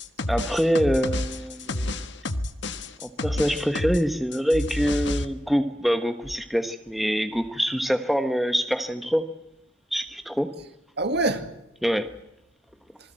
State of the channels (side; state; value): both; normal; correlation 0.88